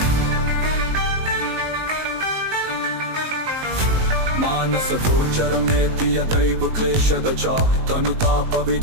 मानस गोचरमेति यदैव क्लेशदचा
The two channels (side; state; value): left; late; 19 ms